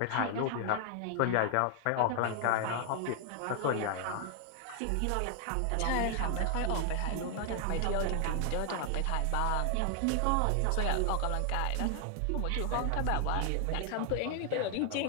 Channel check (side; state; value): both; different; correlation 0.00